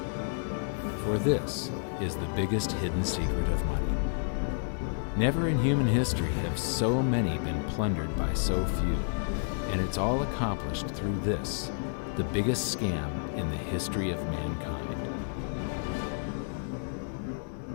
For this is the biggest hidden secret of money. Never in human history have so many been plundered by so few, and it's all accomplished through this, the biggest scam in the history of mankind.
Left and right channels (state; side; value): silent; right; digital silence